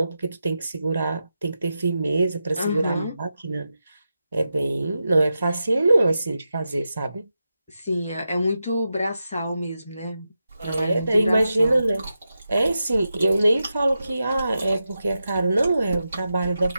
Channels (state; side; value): inverted; both; correlation -0.89